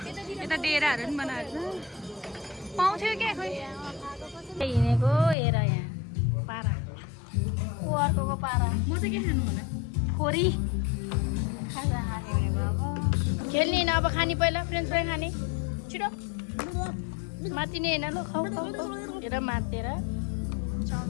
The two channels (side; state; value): right; drops out; at 5.4 s